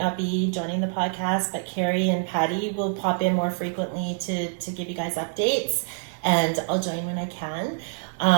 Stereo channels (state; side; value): silent; left; digital silence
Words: be joining the podcast, but KarriLeigh and Patty will pop in more frequently to give you guys updates, and I'll join when I can.